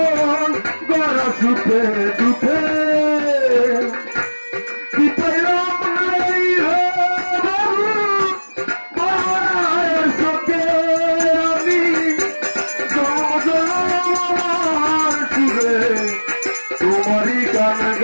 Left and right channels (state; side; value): inverted; both; correlation -1.00